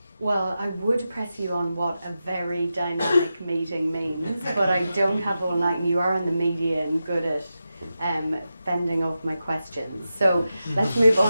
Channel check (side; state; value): both; inverted; correlation -0.91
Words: Well, I would press you on what a very dynamic meeting means, but I don't have all night, and you are in the media and good at fending off my questions. So let's move